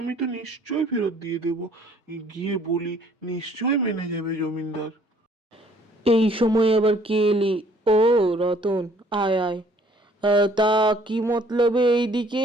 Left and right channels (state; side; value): normal; both; correlation 0.59